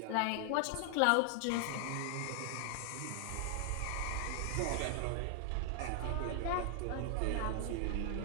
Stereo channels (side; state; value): both; different; correlation 0.00